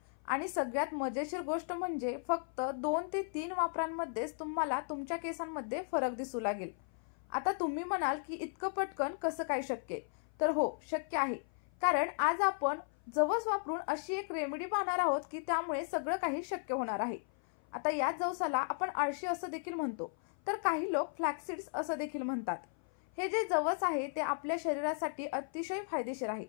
आणि सगळ्यात मजेशीर गोष्ट म्हणजे फक्त 2 ते 3 वापरांमध्येच तुम्हाला तुमच्या केसांमध्ये फरक दिसू लागेल। आता तुम्ही म्हणाल की इतकं पटकन कसं काय शक्य? तर हो, शक्य आहे। कारण आज आपण जवस वापरून अशी एक रेमेडी पाहणार आहोत की त्यामुळे सगळं काही शक्य होणार आहे। आता या जवसाला आपण आळशी असं देखील म्हणतो, तर काही लोक फ्लॅक्सीड्स असं देखील म्हणतात। हे जे जवस आहे ते आपल्या शरीरासाठी अतिशय फायदेशीर आहे,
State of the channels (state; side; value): silent; right; 54 dB below the other